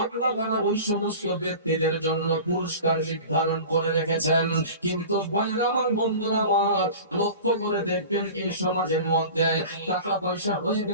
আল্লাহ তাআলা ওই সমস্ত ব্যক্তিদের জন্য পুরস্কার নির্ধারণ করে রেখেছেন। কিন্তু ভাইরা আমার, বন্ধুরা আমার, লক্ষ্য করে দেখবেন এই সমাজের মধ্যে টাকা পয়সা হয়ে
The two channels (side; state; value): both; inverted; correlation -0.37